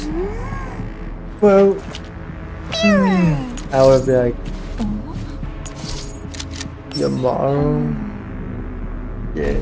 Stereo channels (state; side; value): identical; both; correlation 1.00